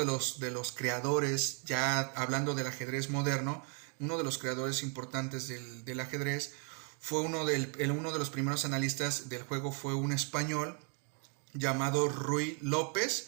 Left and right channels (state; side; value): quieter; left; 38.6 dB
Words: los creadores, ya hablando del ajedrez moderno, uno de los creadores importantes del ajedrez, fue uno de los primeros analistas del juego, fue un español llamado Ruy